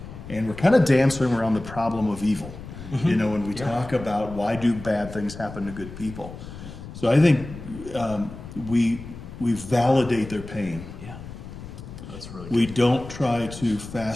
and we're kind of dancing around the problem of evil. When we talk about why do bad things happen to good people. So I think we validate their pain. Yeah. That's really good. We don't try to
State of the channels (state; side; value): noise; left; rumble, 13 dB below the sound